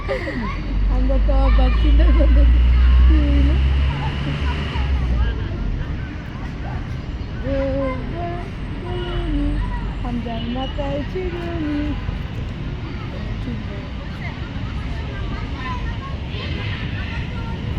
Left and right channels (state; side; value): identical; both; correlation 1.00